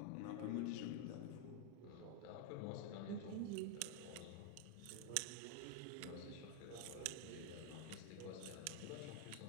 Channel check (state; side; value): different; both; correlation 0.00